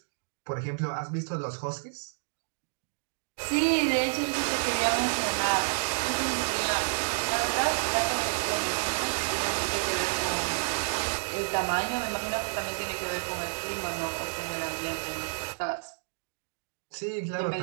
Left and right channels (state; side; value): silent; left; digital silence